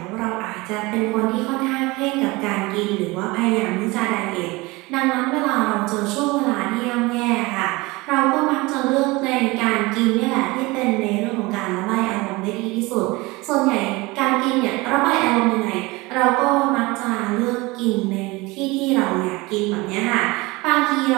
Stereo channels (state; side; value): quieter; left; 23.0 dB